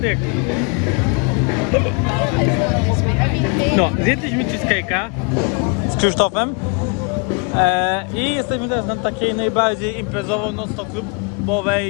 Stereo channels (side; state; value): right; quieter; 35.0 dB